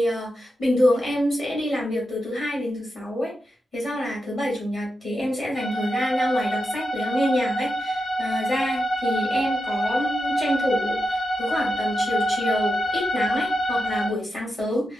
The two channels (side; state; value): both; normal; correlation 0.88